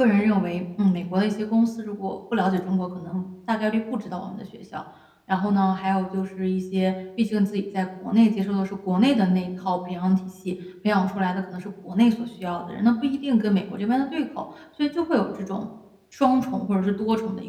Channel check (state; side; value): identical; both; correlation 1.00